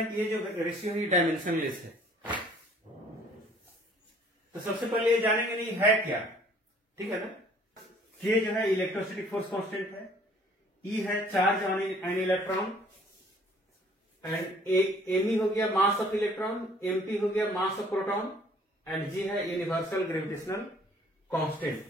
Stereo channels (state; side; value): normal; both; correlation 0.57